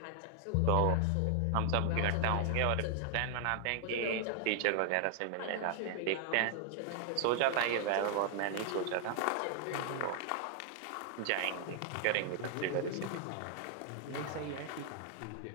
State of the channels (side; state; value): both; different; correlation 0.00